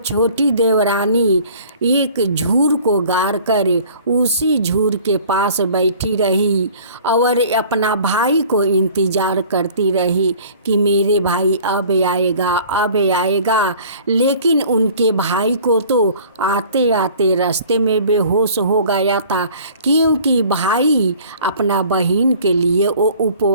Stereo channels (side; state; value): both; inverted; correlation -0.49